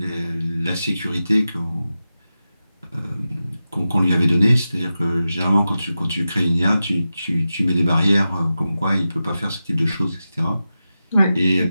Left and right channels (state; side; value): inverted; both; correlation -0.92